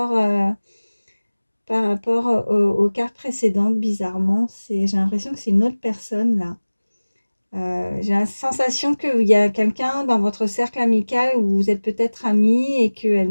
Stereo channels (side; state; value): both; inverted; correlation -1.00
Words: aux cartes précédentes, bizarrement. J'ai l'impression que c'est une autre personne, là. J'ai la sensation qu'il y a quelqu'un dans votre cercle amical où vous êtes peut-être amis et qu'elle